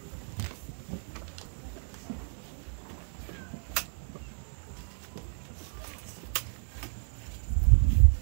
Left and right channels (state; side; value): silent; left; 57 dB below the other